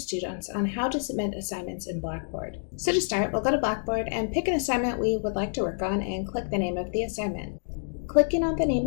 on how to submit assignments in Blackboard. So to start, we'll go to Blackboard and pick an assignment we would like to work on and click the name of the assignment. Clicking on the name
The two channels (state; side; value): silent; right; digital silence